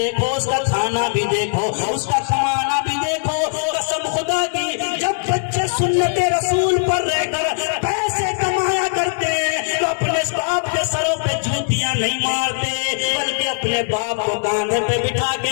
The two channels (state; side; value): silent; right; digital silence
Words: اس کا کھانا بھی دیکھو، اس کا کمانا بھی دیکھو۔ قسم خدا کی جب بچے سنت رسول پر رہ کر پیسے کمایا کرتے تو اپنے باپ کے سروں پہ جوتیاں نہیں مارتے، بلکہ اپنے باپ کو کاندھے پہ بٹھا